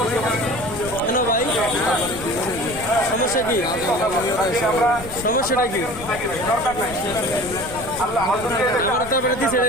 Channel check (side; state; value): left; noise; rumble, 13 dB below the sound